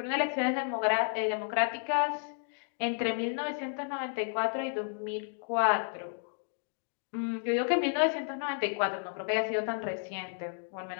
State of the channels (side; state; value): right; silent; 56 dB below the other